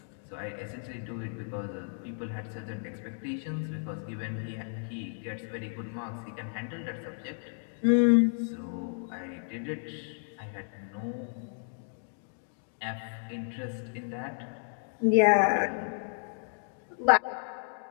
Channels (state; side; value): silent; right; digital silence